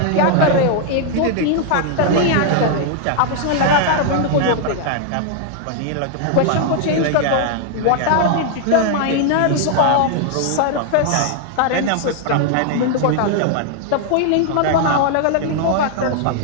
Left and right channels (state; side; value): different; both; correlation 0.00